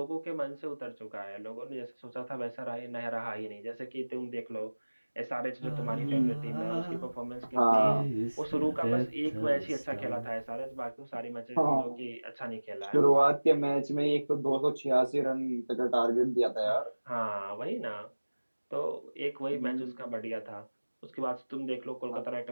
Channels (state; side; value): inverted; both; correlation -1.00